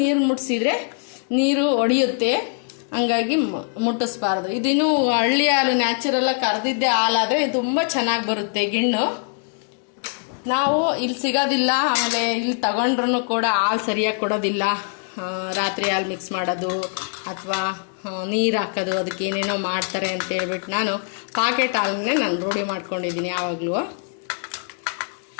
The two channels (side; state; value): right; silent; 55 dB below the other